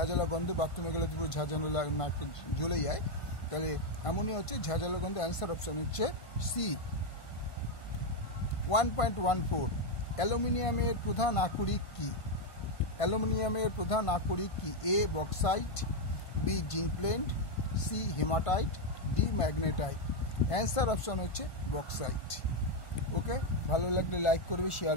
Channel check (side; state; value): right; late; 1.5 ms